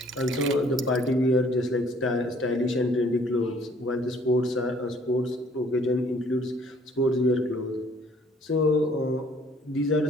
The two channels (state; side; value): normal; both; correlation 0.59